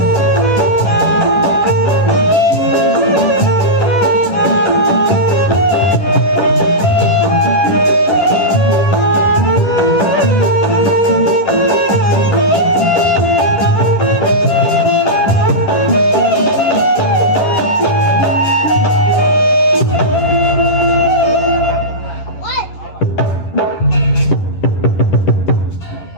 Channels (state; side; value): late; right; 11 ms